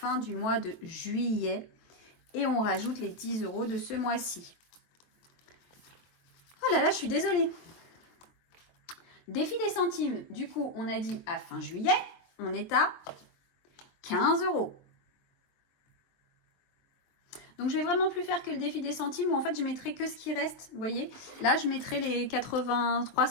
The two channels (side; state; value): right; late; 23 ms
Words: du mois de juillet. Et on rajoute les 10 € de ce mois-ci. Oh là là, je suis désolée. Défi des centimes. Du coup, on a dit à fin juillet, on est à 15 €. Donc, je vais vraiment plus faire que le défi des centimes où en fait, je mettrai que ce qui reste. Vous voyez, là, je mettrai les 83